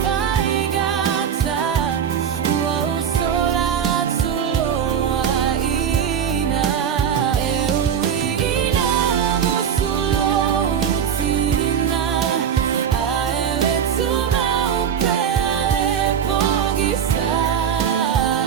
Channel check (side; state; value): left; quieter; 8.2 dB